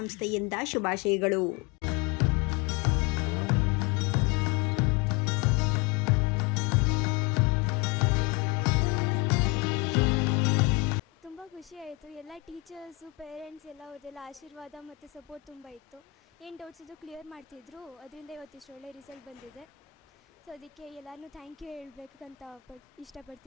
ಶುಭಾಶಯಗಳು. ತುಂಬ ಖುಷಿ ಆಯಿತು. ಎಲ್ಲ ಟೀಚರ್ಸು, ಪೇರೆಂಟ್ಸ್ ಎಲ್ಲ ಅವ್ರದ್ದೆಲ್ಲ ಆಶೀರ್ವಾದ ಮತ್ತು ಸಪೋರ್ಟ್ ತುಂಬ ಇತ್ತು. ಏನು ಡೌಟ್ಸ್ ಇದ್ದು ಕ್ಲಿಯರ್ ಮಾಡ್ತಿದ್ರು. ಅದರಿಂದ ಇವತ್ತಿಷ್ಟು ಒಳ್ಳೆ ರಿಸಲ್ಟ್ ಬಂದಿದೆ. ಸೊ ಅದಕ್ಕೆ ಎಲ್ಲರೂ ಥ್ಯಾಂಕ್ ಯು ಹೇಳಬೇಕಂತ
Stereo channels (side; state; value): right; quieter; 22.1 dB